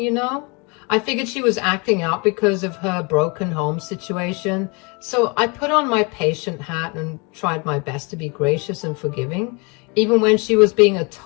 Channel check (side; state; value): right; quieter; 30.8 dB